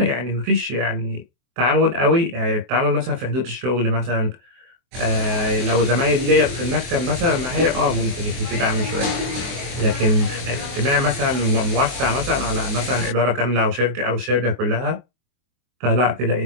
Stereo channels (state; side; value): late; left; 24 ms